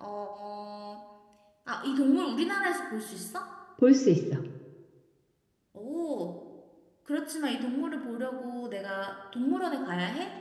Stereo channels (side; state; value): both; identical; correlation 1.00